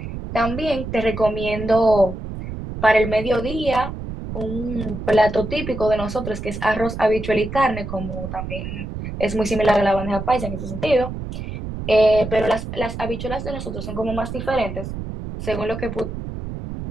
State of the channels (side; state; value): right; noise; rumble, 7 dB below the sound